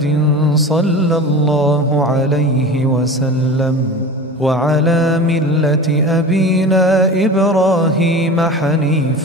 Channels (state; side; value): normal; both; correlation 0.34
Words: صلى الله عليه وسلم وعلى ملة أبينا إبراهيم